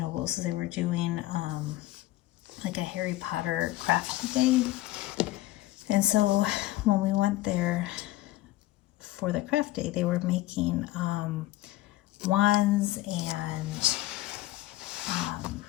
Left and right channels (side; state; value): right; quieter; 17.0 dB